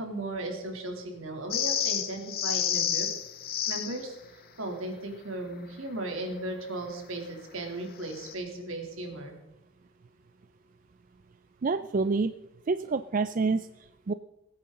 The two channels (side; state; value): both; normal; correlation 0.17